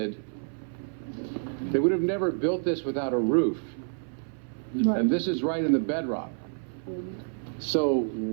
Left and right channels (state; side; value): silent; left; 59 dB below the other